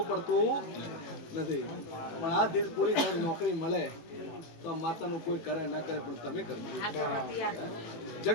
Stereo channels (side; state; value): right; late; 18 ms